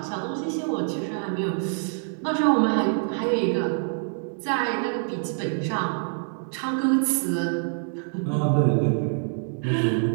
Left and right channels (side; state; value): left; silent; digital silence